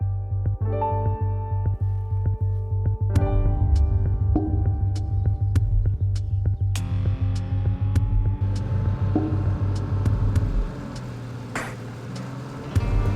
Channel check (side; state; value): both; identical; correlation 1.00